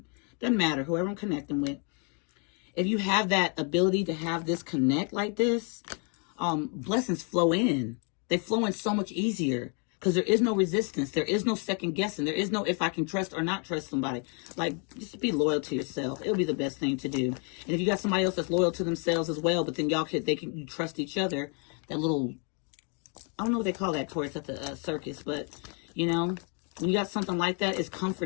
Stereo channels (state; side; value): quieter; right; 38.5 dB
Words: doesn't matter, whoever I'm connecting with. If you have that ability to have this connect like this, blessings flow in. They flow in so much easier because there is no resistance. There is no second guessing. There is no if I can trust or not trust somebody. Like, just be loyal to yourself. It'll be the best thing to do. And if you got somebody else that's loyal to themselves as well, but then you trust each other, that little, I don't know what they call that towards at the circus, but, you know, when you got something like that, it's